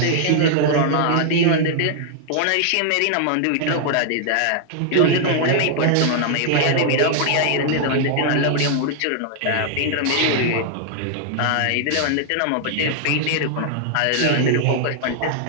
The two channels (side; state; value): both; different; correlation 0.00